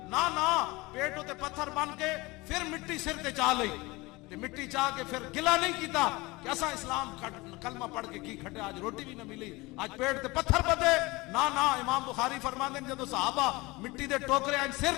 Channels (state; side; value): quieter; right; 22.8 dB